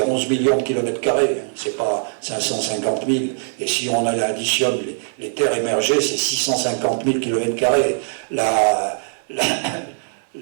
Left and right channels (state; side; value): silent; left; digital silence